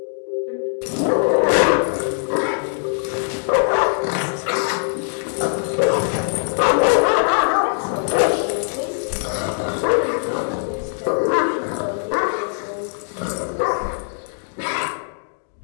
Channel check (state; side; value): silent; right; digital silence